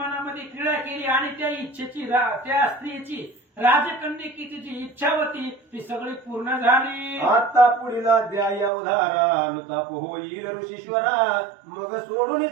क्रीडा केली आणि त्या इच्छेची त्या स्त्रीची राजकन्यकेची जी इच्छा होती ती सगळी पूर्ण झाली. आता पुढील अध्याय अवधारा अनुताप होईल ऋषीश्वरा, मग सोडून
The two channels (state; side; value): drops out; left; at 8.7 s